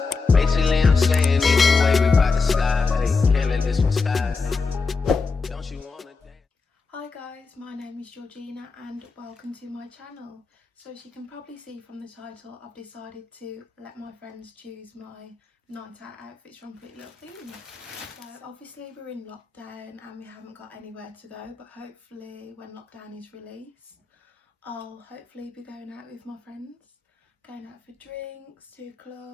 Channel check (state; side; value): quieter; right; 4.4 dB